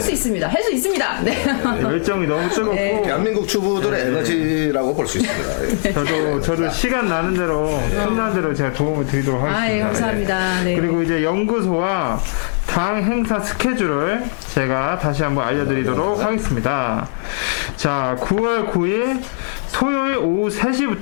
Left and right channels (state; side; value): silent; right; 63 dB below the other